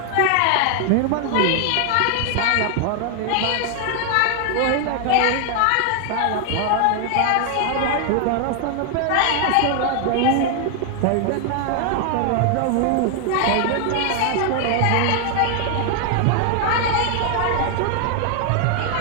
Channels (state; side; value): different; both; correlation 0.00